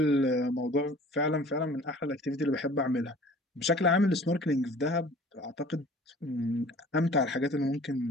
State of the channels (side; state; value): both; normal; correlation 0.48